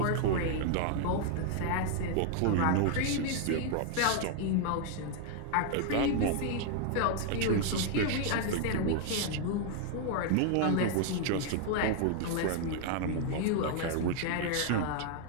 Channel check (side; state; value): both; different; correlation 0.00